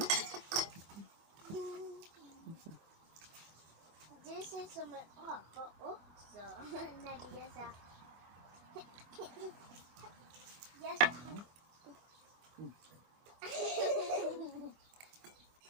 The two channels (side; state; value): left; late; 25 ms